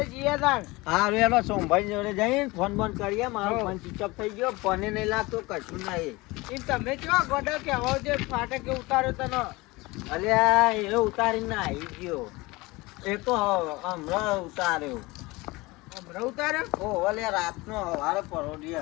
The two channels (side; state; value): right; quieter; 22.4 dB